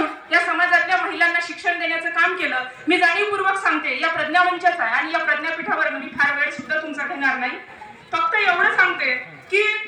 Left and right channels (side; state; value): both; identical; correlation 1.00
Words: या समाजातल्या महिलांना शिक्षण देण्याचं काम केलं। मी जाणीवपूर्वक सांगते, या प्रज्ञामंचाचा आहे आणि या प्रज्ञापीठावर मी फार वेळ सुद्धा तुमचा घेणार नाही, फक्त एवढं सांगते की